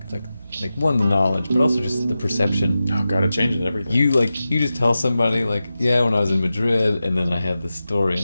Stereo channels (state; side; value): inverted; both; correlation -0.93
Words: one, the knowledge, but also just the perception. Oh god, it changes everything. You just tell somebody like, yeah, when I was in Madrid, and then I had this story